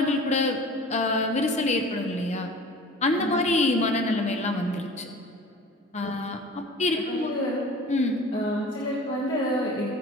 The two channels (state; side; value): normal; both; correlation 0.41